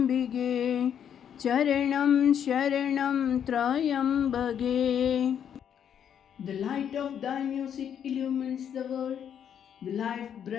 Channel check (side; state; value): right; quieter; 8.8 dB